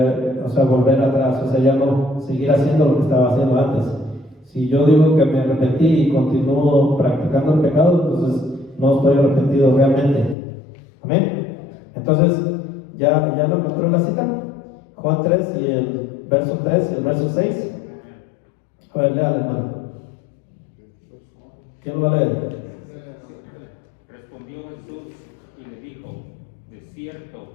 atrás, o sea, ya no seguir haciendo lo que estaba haciendo antes. Si yo digo que me arrepentí y continúo practicando el pecado, entonces no estoy arrepentido realmente. Amén. Entonces, ¿ya lo encontró la cita? Juan 3 y el verso 3 y el verso 6. A ver, léale, hermano. ¿Quién lo va a leer? Respondió Jesús y le dijo, de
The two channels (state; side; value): drops out; right; at 10.4 s